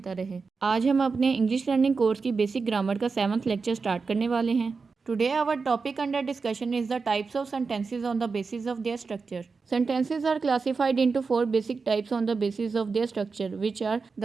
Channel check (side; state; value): left; quieter; 4.7 dB